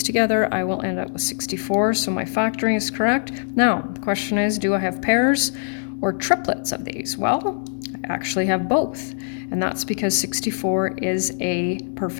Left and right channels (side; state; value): right; silent; digital silence